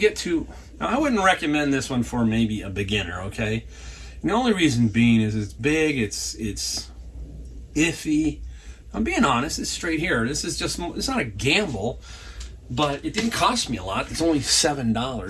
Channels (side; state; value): both; identical; correlation 1.00